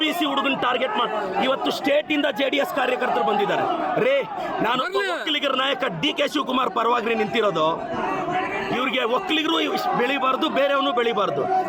ಹುಡುಗನ ಟಾರ್ಗೆಟ್ ಮಾಡಿ ಇವತ್ತು ಸ್ಟೇಟ್ ಇಂದ JDS ಕಾರ್ಯಕರ್ತರು ಬಂದಿದ್ದಾರೆ. ರೇ, ನಾನು ಒಕ್ಕಲಿಗರ ನಾಯಕ DK ಶಿವಕುಮಾರ್ ಪರವಾಗಿ ನಿಂತಿರೋದು. ಇವ್ರಿಗೆ ಒಕ್ಕಲಿಗರು ಬೆಳಿಬಾರ್ದು, ಬೇರೆಯವನು ಬೆಳಿಬಾರ್ದು.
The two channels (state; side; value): identical; both; correlation 1.00